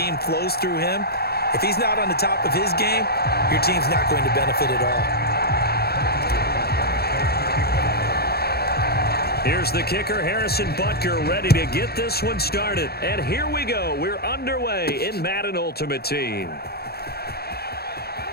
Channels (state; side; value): late; right; 0.46 ms